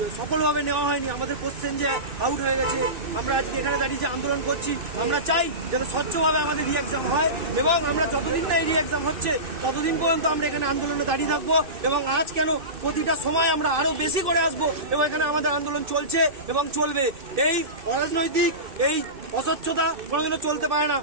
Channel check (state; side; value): late; left; 2.6 ms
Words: সফলভাবে নেওয়া হয়নি, আমাদের কোশ্চেন যে আউট হয়ে গেছে, আমরা আজকে এখানে দাঁড়িয়ে যে আন্দোলন করছি। আমরা চাই যাতে স্বচ্ছভাবে আমাদের রি এক্সাম হয়, এবং আমরা যতদিন না এই রি এক্সাম হচ্ছে ততদিন পর্যন্ত আমরা এখানে আন্দোলনে দাঁড়িয়ে থাকবো। এবং আজ কেন, প্রতিটা সময় আমরা আরো বেশি করে আসবো, এবং এখানে আমাদের আন্দোলন চলছে এবং চলবে। এই অরাজনৈতিক, এই অস্বচ্ছতা কোনোদিনও চলতে পারে না।